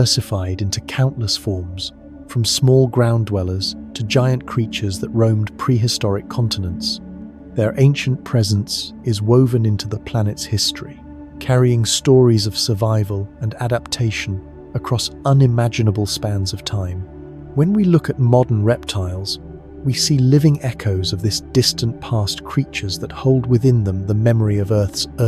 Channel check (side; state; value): both; identical; correlation 1.00